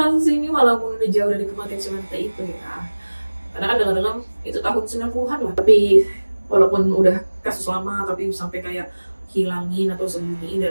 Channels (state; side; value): inverted; both; correlation -1.00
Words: ini walaupun udah jauh dari kematian si wanita itu ya, karena kan dengar-dengar itu tahun 90-an lah, tapi walaupun udah kasus lama tapi sampai kayak hilangin atau sembunyiin